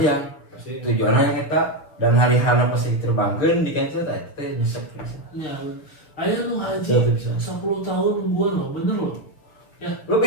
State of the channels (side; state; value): right; late; 6.4 ms